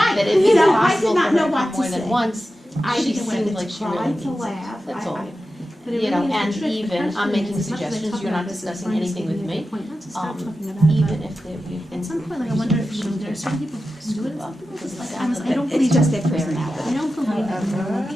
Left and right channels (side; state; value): both; normal; correlation 0.92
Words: that if You it's know, I possible did not for her know to what come to more than say. once, I she didn't want seemed to like she try really to needs it. laugh. That's all. But it You know, really is and the trick. The even, question I'm making is, as much as I suggestions, talk you're about not this, discussing Brian's anything with giving me. a point not to stop talking about it, Even but if you've been. at some point, like, I wonder if, there are certain people who can do it, some people just, like, I don't It's believe just that. their personality. I don't believe that everyone